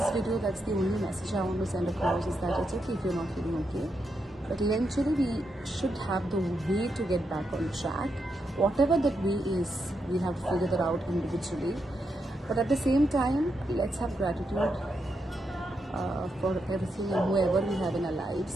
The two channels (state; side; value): normal; both; correlation 0.83